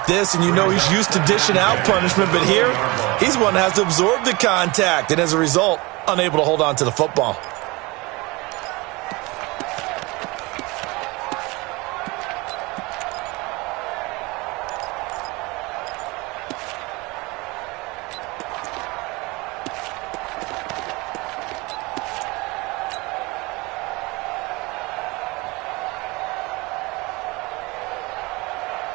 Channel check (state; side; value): quieter; left; 24.3 dB